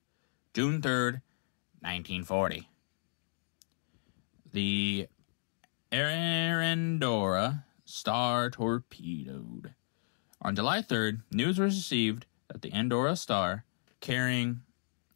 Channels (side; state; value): right; silent; digital silence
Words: June 3rd, 1940. The Endor Star torpedoed. On July 3rd, news was received that the Endor Star, carrying